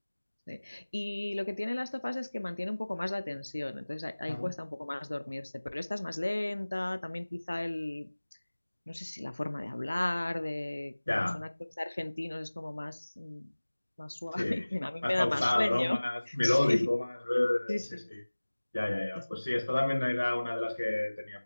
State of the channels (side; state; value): both; inverted; correlation -1.00